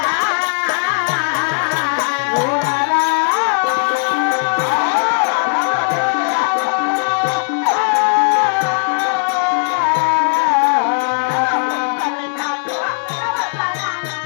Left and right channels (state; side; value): silent; right; digital silence